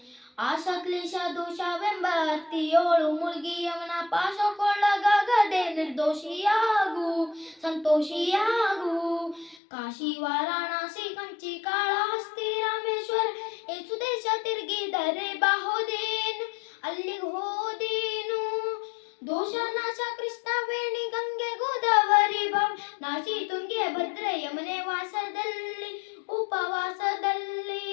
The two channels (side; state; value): right; drops out; at 9.6 s